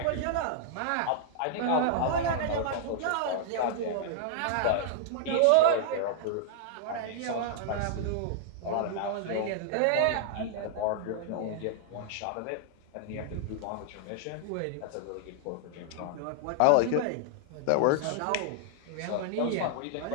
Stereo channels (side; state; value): both; different; correlation -0.01